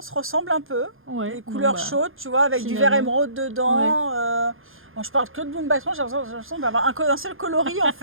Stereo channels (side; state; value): left; late; 0.60 ms